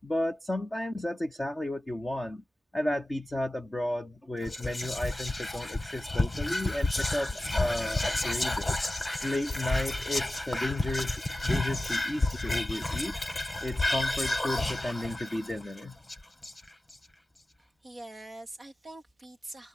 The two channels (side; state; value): both; normal; correlation 0.95